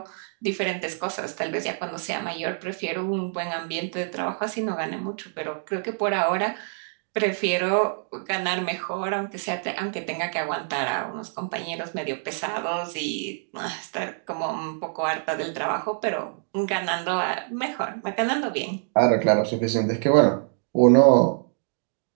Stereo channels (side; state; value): left; silent; digital silence